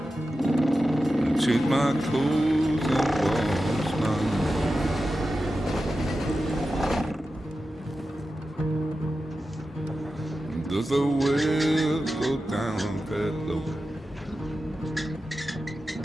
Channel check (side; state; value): both; normal; correlation 0.92